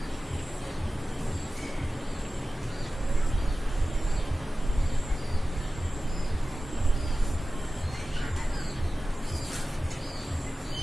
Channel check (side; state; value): both; normal; correlation 0.95